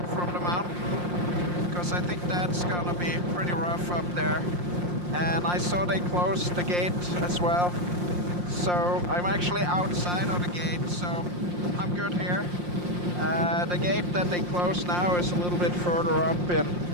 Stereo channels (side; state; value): left; late; 5.7 ms